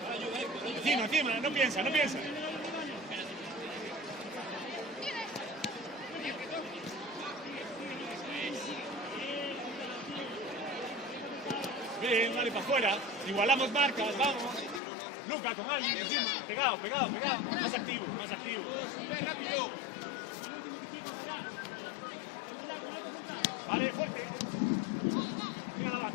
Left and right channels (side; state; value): right; drops out; at 14.8 s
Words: Encima, no piensa. Bien, dale para afuera. Igualamos marcas, vamos. Luca con alguien encima. Pegado. Más activo. Vale, fuerte. Mira la